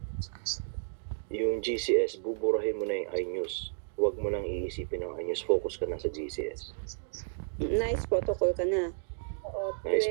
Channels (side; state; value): left; silent; digital silence